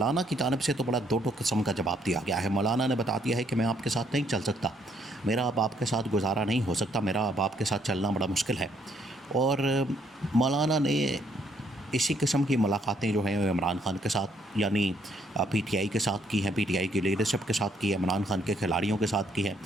की जानिब से तो बड़ा दो टोक किस्म का जवाब दिया गया है। मौलाना ने बता दिया है कि मैं आपके साथ नहीं चल सकता, मेरा अब आपके साथ गुजारा नहीं हो सकता, मेरा अब आपके साथ चलना बड़ा मुश्किल है। और मौलाना ने इसी किस्म की मुलाकातें जो हैं इमरान खान के साथ यानी पीटीआई के साथ की हैं, पीटीआई की लीडरशिप के साथ की है, इमरान खान के खिलाड़ियों के साथ की है,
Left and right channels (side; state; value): both; normal; correlation 0.69